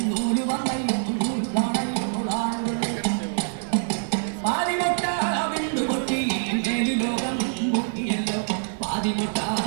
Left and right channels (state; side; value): silent; left; 62 dB below the other